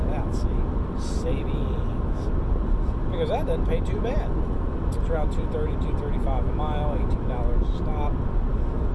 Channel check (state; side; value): identical; both; correlation 1.00